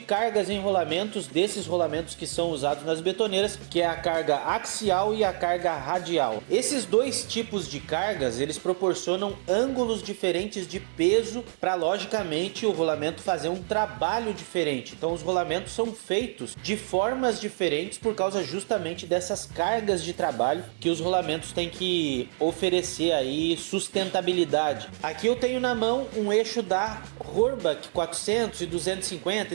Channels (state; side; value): silent; left; digital silence